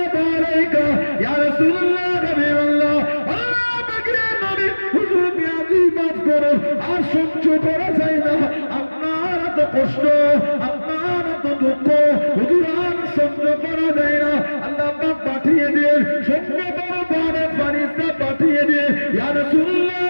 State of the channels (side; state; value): both; inverted; correlation -1.00